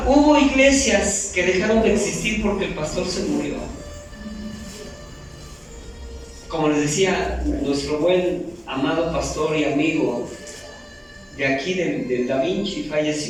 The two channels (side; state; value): both; identical; correlation 1.00